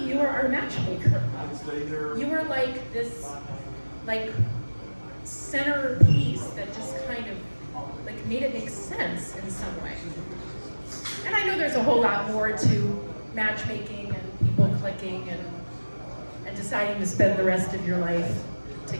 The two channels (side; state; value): both; inverted; correlation -1.00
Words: are our matchmaker. You were like this, centerpiece that just kind of, made it make sense in some way." And I know there's a whole lot more to matchmaking and people clicking and deciding to spend the rest of your life